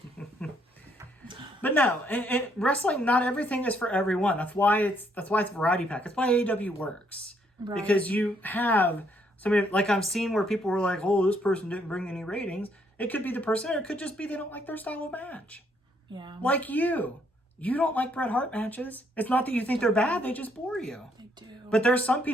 But no, wrestling, not everything is for everyone. That's why it's variety pack. That's why AEW works. Right. Because you have somebody, like I've seen where people were like, oh, this person didn't bring any ratings. It could be the person, or it could just be they don't like their style of match. Yeah. Like you. You don't like Bret Hart matches. It's not that you think they're bad, they just bore you. They do. But there's some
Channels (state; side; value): normal; both; correlation 0.70